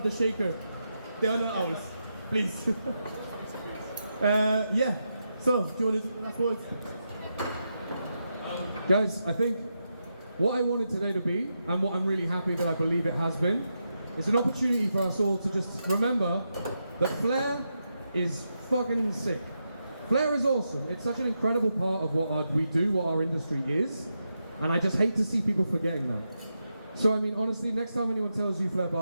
the shaker. They are not ours. Please. Yeah. So do you want to do the last words? Guys, I think what I wanted today to be, and what I'm really happy that I believe it has been, is an opportunity for us all to just remember that Flair is fucking sick. Flair is awesome. It's such an incredible part of what we do, what our industry is, and I just hate to see people forgetting that. So I mean, honestly, next time anyone tells you Flair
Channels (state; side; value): inverted; both; correlation -0.86